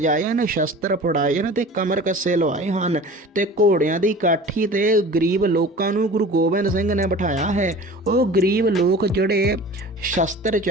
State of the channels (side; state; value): both; normal; correlation 0.40